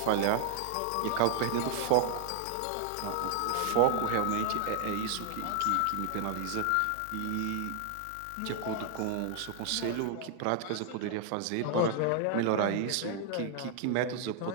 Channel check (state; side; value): different; both; correlation 0.00